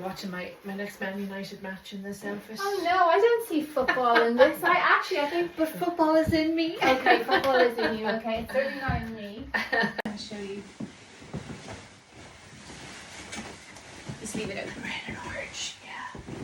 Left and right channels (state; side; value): identical; both; correlation 1.00